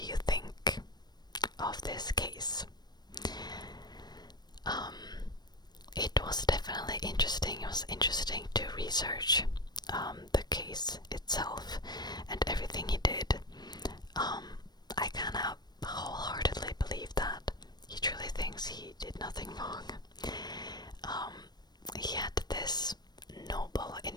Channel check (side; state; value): right; late; 0.20 ms